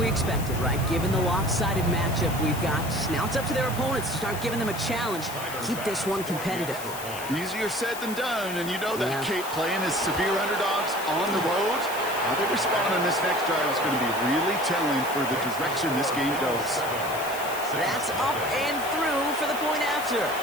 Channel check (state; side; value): noise; left; hiss, 11 dB below the sound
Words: expected, right? Given the lopsided matchup we've got. Now it's up to their opponents to start giving them a challenge. Keep this one competitive. Easier said than done, and you know that Kate playing as severe underdogs on the road. How they respond on this next drive is going to be really telling for the direction this game goes. That's up and through for the point after.